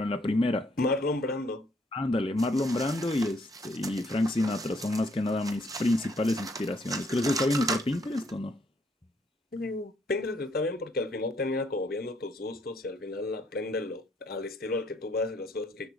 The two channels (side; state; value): both; normal; correlation 0.69